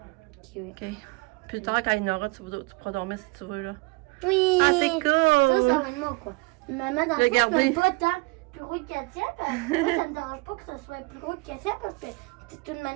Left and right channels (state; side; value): quieter; left; 27.5 dB